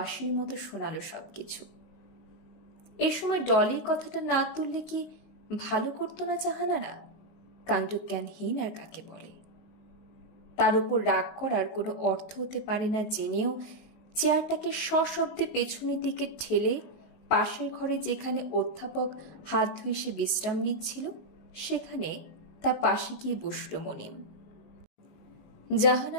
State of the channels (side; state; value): right; late; 19 ms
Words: মতো শোনালো সবকিছু। এ সময় ডলির কথাটা না তুললে কি ভালো করতো না জাহানারা? কাণ্ডজ্ঞানহীন আর কাকে বলে? তার উপর রাগ করার কোনো অর্থ হতে পারে না জেনেও চেয়ারটাকে সশব্দে পেছনের দিকে ঠেলে পাশের ঘরে যেখানে অধ্যাপক হাত ধুয়ে সে বিশ্রাম নিচ্ছিল সেখানে তার পাশে গিয়ে বসল মনিম।